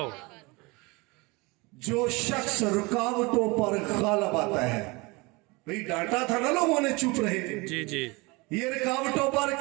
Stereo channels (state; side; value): quieter; left; 25.7 dB